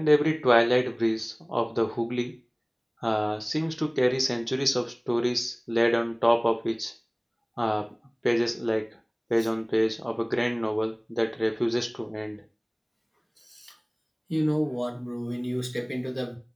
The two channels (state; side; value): identical; both; correlation 1.00